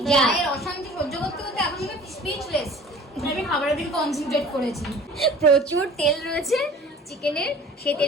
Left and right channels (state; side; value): normal; both; correlation 0.47